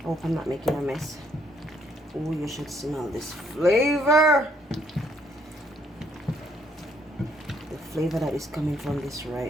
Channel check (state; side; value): normal; both; correlation 0.68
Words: hope I'm not making a mess. Oh, you should smell this flavor. The flavor that is coming from this